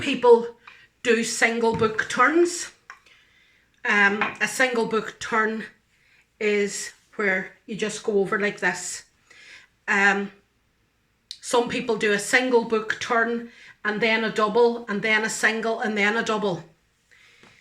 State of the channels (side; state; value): both; identical; correlation 1.00